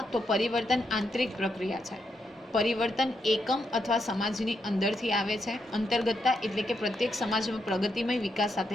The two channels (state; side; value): normal; both; correlation 0.81